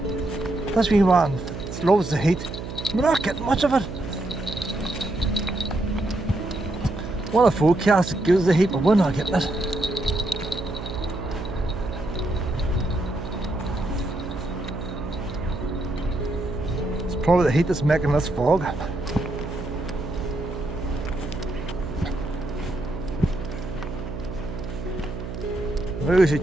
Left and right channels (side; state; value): right; noise; hum, 8 dB below the sound